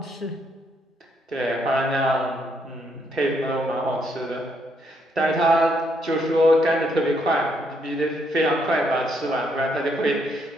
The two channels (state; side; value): normal; both; correlation 0.73